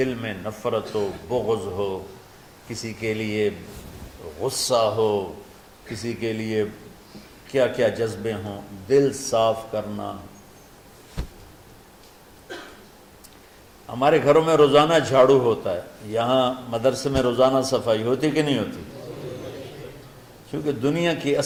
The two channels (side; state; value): both; identical; correlation 1.00